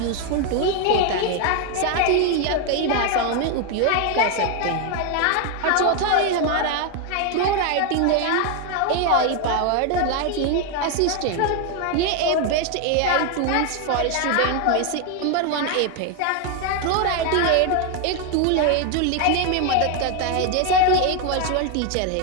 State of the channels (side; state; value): both; different; correlation 0.01